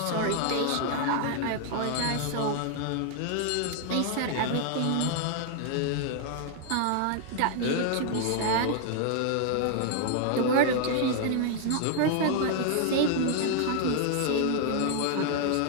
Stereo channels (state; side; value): different; both; correlation 0.00